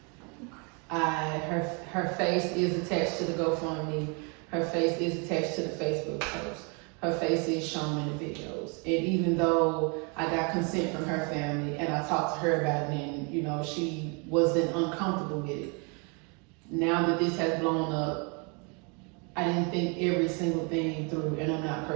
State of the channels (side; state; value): left; quieter; 33.8 dB